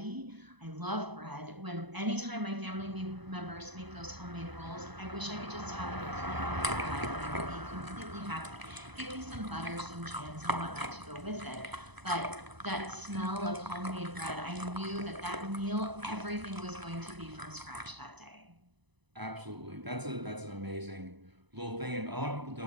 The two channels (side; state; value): left; late; 1.0 ms